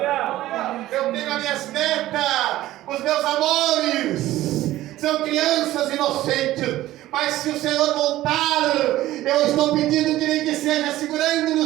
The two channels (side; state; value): left; quieter; 15.3 dB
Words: Eu tenho as minhas netas, os meus amores, são crianças inocentes, mas se o Senhor voltar, eu estou pedindo que nem que seja segurando no